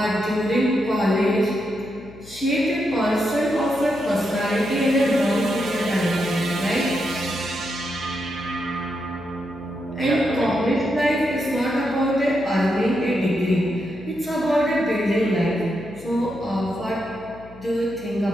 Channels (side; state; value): left; noise; hum, 19 dB below the sound